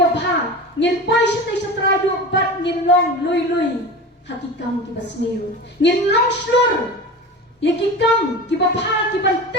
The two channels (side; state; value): both; normal; correlation 0.31